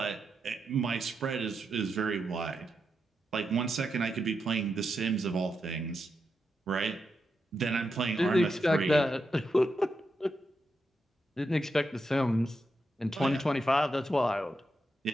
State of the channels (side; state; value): both; normal; correlation 0.85